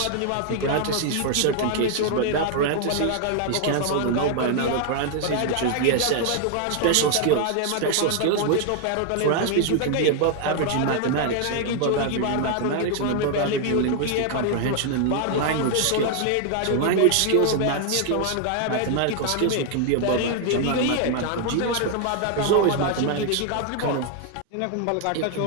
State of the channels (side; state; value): both; different; correlation 0.00